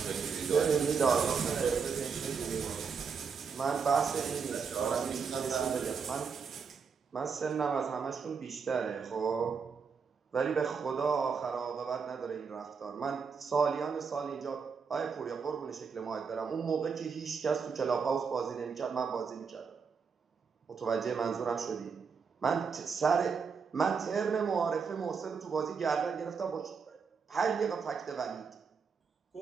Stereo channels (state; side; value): quieter; left; 5.8 dB